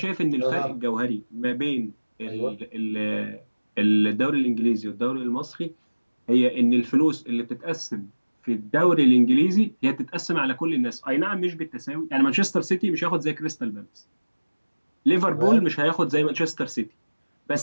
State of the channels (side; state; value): both; inverted; correlation -1.00